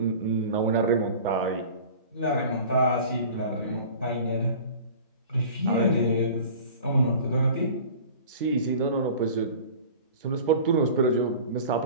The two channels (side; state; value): both; inverted; correlation -0.41